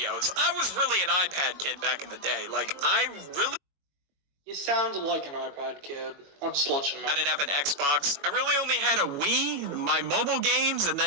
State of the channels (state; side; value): late; left; 21 ms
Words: I was really an iPad kid back in the day. Like, I really... You sounded like an iPad kid. I'll just let you know. I didn't have an Xbox. I really only had a Wii, my mobile games, and